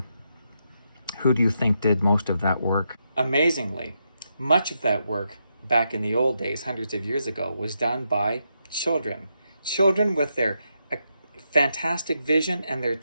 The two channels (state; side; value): inverted; both; correlation -0.82